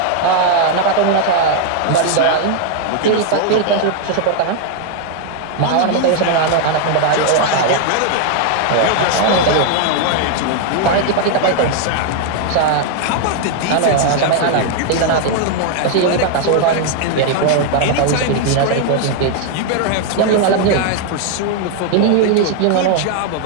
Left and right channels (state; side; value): different; both; correlation 0.00